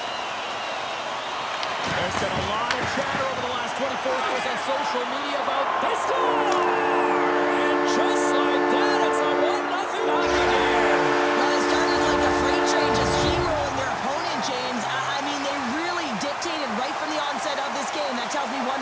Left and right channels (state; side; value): identical; both; correlation 1.00